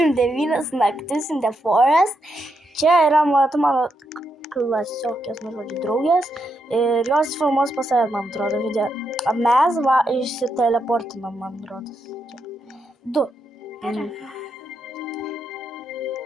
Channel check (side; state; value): both; normal; correlation 0.82